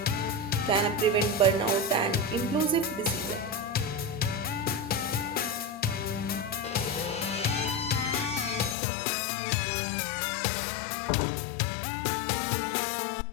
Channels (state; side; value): drops out; right; at 8.8 s